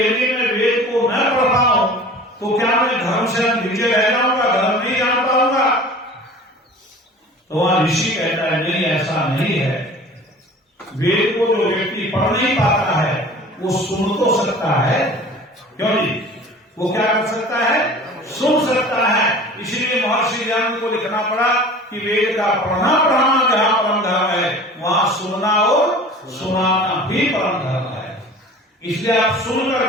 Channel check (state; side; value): normal; both; correlation 0.42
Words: मैं वेद को न पढ़ पाऊं तो क्या मैं धर्म से नीचे रह जाऊंगा, धर्म नहीं जान पाऊंगा? तो वहां ऋषि कहता है नहीं, ऐसा नहीं है। वेद को जो व्यक्ति पढ़ नहीं पाता है वो सुन तो सकता है, क्यों नहीं? वो क्या कर सकता है? सुन सकता है। इसलिए महर्षि ज्ञान को लिखना पड़ा कि वेद का पढ़ना पढ़ाना जहां परम धर्म है, वहां सुनना और सुनाना भी परम धर्म है। इसलिए आप सुन